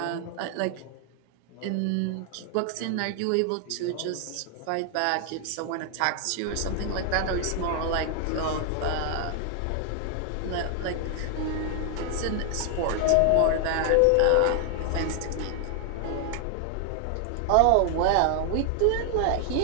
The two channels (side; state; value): both; different; correlation 0.00